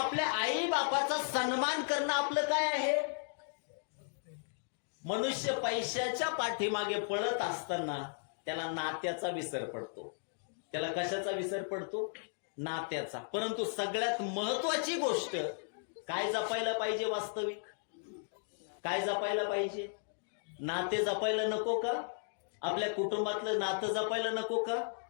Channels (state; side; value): silent; right; digital silence